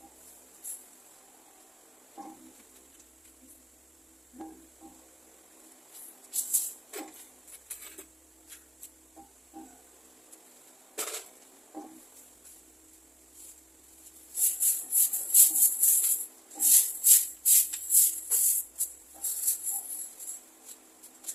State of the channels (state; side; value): normal; both; correlation 0.92